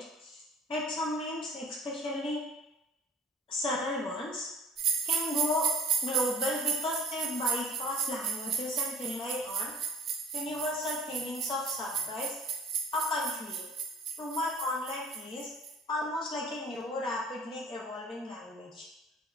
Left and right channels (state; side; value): normal; both; correlation 0.51